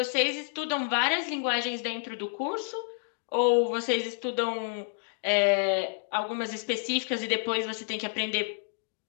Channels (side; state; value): right; silent; 58 dB below the other